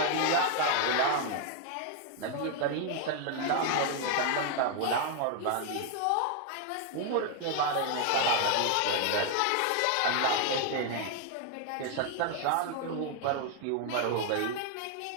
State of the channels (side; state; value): both; different; correlation 0.00